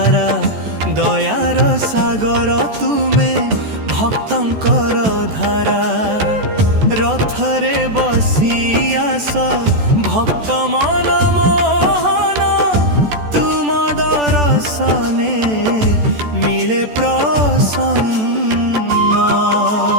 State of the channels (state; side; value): late; left; 14 ms